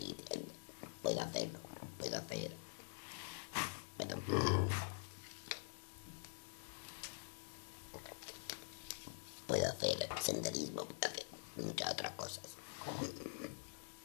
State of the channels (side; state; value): right; silent; digital silence